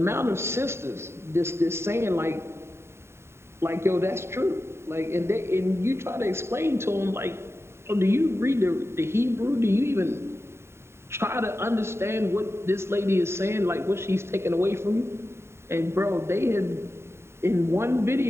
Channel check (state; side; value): late; left; 0.12 ms